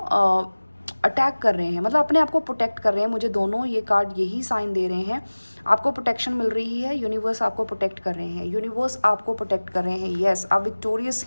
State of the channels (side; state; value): both; inverted; correlation -1.00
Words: अटैक कर रहे हैं, मतलब अपने आप को प्रोटेक्ट कर रहे हैं। मुझे दोनों ये कार्ड यही साइन दे रहे हैं। आपको प्रोटेक्शन मिल रही है, यूनिवर्स आपको प्रोटेक्ट कर रहे हैं, यूनिवर्स आपको प्रोटेक्ट कर रहे हैं। यस, आप विक्टोरियस